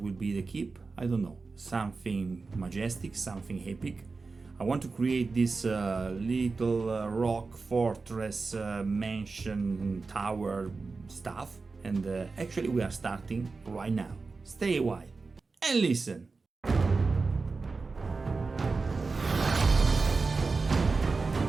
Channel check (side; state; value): left; quieter; 4.1 dB